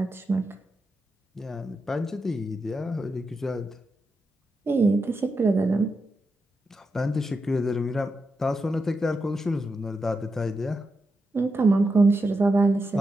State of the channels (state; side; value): normal; both; correlation 0.87